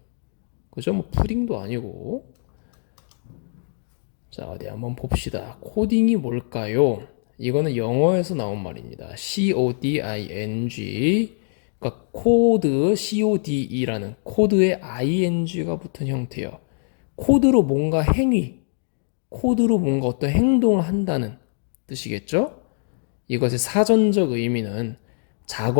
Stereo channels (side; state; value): right; silent; digital silence